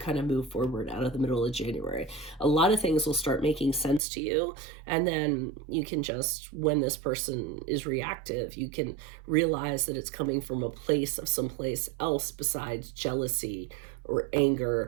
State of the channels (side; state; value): left; drops out; at 4.0 s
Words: of move forward out of the middle of January. A lot of things will start making sense to you, and then you can just, when this person is reactive, you can realize that it's coming from a place of someplace else besides jealousy or